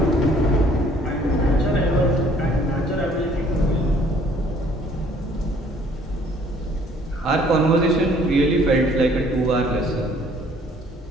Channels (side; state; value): both; normal; correlation 0.59